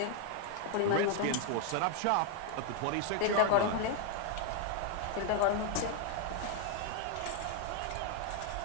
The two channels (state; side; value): different; both; correlation 0.00